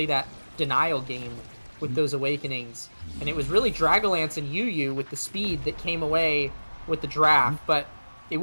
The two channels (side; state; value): both; inverted; correlation -1.00